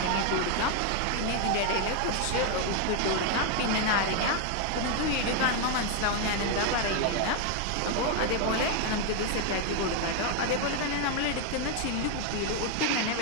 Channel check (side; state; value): both; different; correlation 0.01